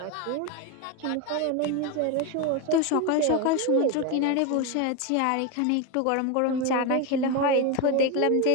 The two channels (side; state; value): both; different; correlation 0.03